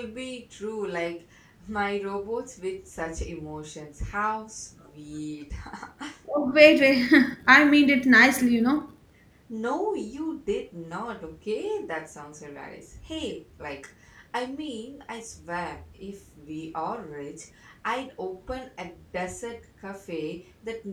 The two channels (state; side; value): identical; both; correlation 1.00